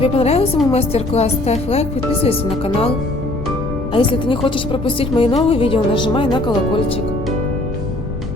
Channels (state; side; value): noise; left; rumble, 7 dB below the sound